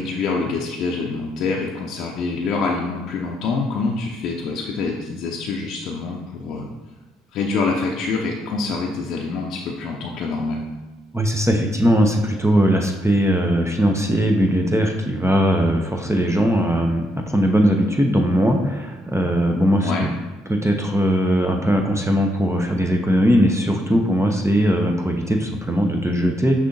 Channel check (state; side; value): normal; both; correlation 0.78